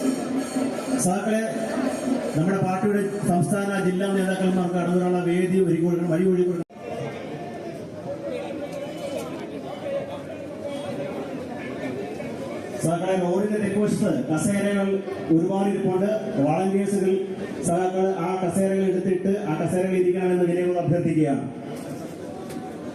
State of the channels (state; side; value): identical; both; correlation 1.00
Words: സാക്കളെ നമ്മുടെ പാർട്ടിയുടെ സംസ്ഥാന ജില്ലാ നേതാക്കന്മാർക്ക് കടന്നുവരാനുള്ള വേദി വഴി കൊടുക്കണം. സഹാക്കളെ റോഡിന്റെ തെക്കുവശത്ത് കസേരകൾ ഒരുപാട് ഇരിപ്പുണ്ട്. വാളണ്ടിയേഴ്സുകൾ സഹാക്കൾ ആ കസേരകൾ എടുത്തിട്ട് ആ കസേരകൾ ഇരിക്കണമെന്ന് വിനയങ്ങൾ അഭ്യർത്ഥിക്കുകയാണ്.